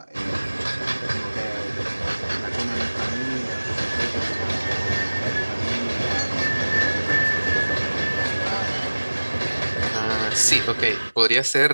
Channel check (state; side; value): inverted; both; correlation -1.00